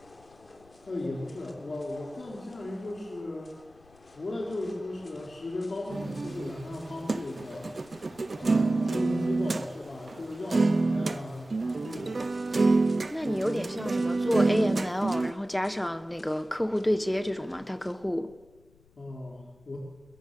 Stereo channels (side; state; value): left; noise; rumble, 29 dB below the sound